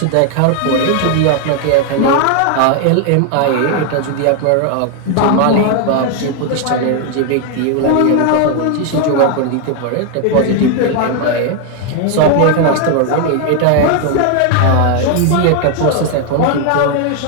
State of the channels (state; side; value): different; both; correlation 0.01